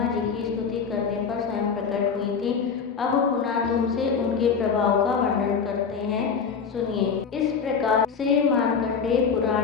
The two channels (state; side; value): quieter; right; 6.0 dB